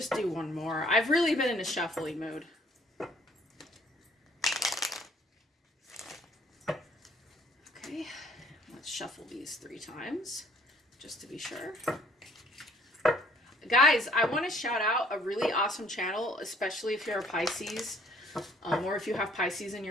do one more. I've really been in a shuffling mood. Okay. Let's shuffle these 3 times just to be sure. Guys, I want to shout out a really awesome channel, especially if you're a Pisces. Or if you have Pisces in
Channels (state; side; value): normal; both; correlation 0.59